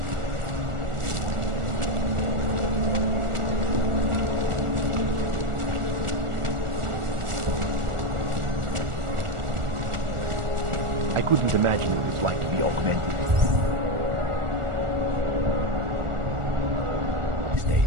I couldn't imagine what it was like to be augmented. These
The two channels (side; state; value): left; late; 1.4 ms